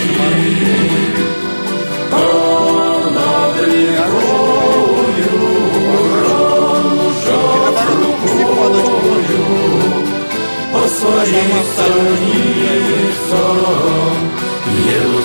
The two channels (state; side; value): inverted; both; correlation -1.00